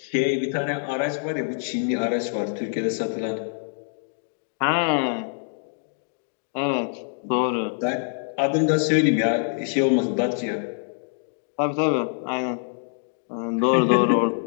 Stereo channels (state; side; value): silent; right; digital silence